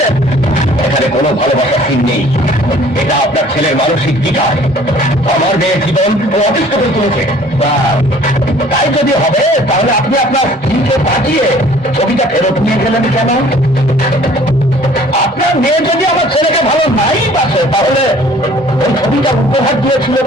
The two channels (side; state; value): both; normal; correlation 0.53